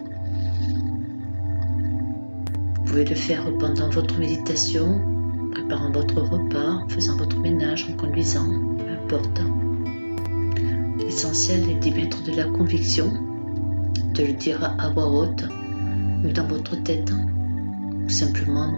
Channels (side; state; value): both; inverted; correlation -1.00